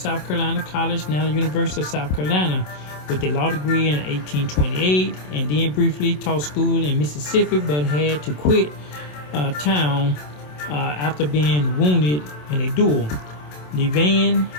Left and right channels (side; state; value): right; late; 27 ms